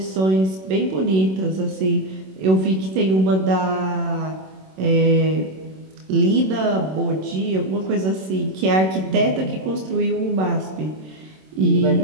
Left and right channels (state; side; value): late; left; 27 ms